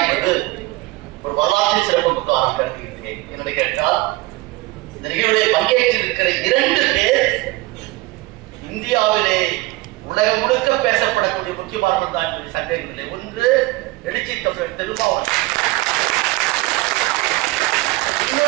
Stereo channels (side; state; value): left; quieter; 20.6 dB